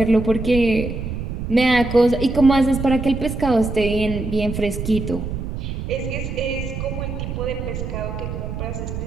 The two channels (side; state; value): right; noise; rumble, 5 dB below the sound